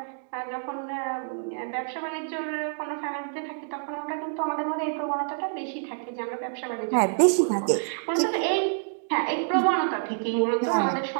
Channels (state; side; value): silent; left; digital silence